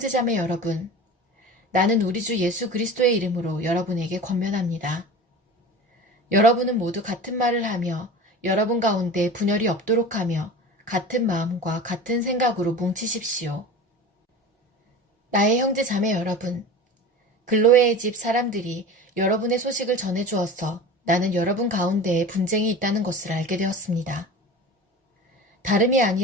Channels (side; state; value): both; normal; correlation 0.35